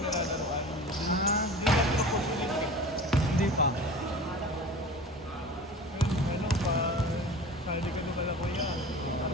Hindi na ito populis eh. Hindi pa. Ano pa, hindi ka naman ako yan. Para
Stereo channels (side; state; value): both; normal; correlation 0.38